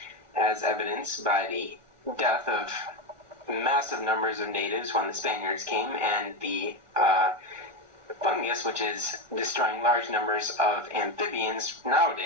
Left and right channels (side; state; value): left; late; 1.4 ms